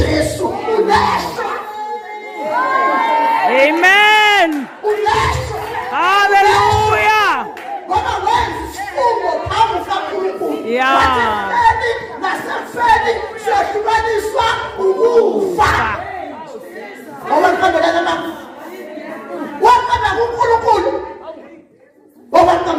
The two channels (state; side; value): identical; both; correlation 1.00